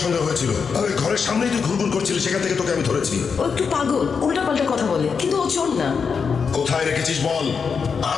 সন্দেহ হয়েছিল, আর ওই ঘরের সামনেই তুই ঘুরঘুর করছিলি, সেখান থেকে তোকে আমি ধরেছি। ও একটু পাগল, উল্টা পাল্টা কথা বলে, কিন্তু ও চোর না। কোথায় রেখেছিস বল,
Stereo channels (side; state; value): right; quieter; 5.8 dB